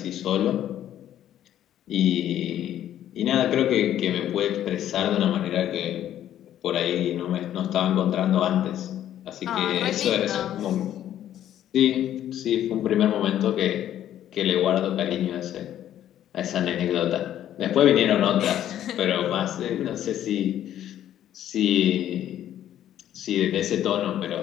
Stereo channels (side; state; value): right; quieter; 11.4 dB